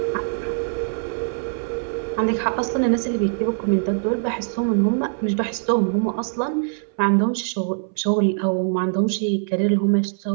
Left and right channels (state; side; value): silent; left; 64 dB below the other